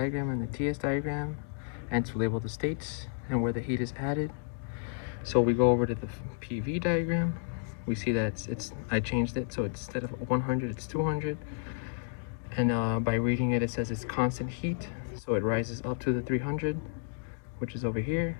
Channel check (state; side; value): silent; right; digital silence